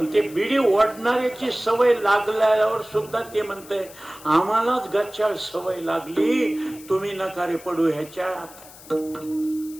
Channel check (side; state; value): left; noise; hiss, 19 dB below the sound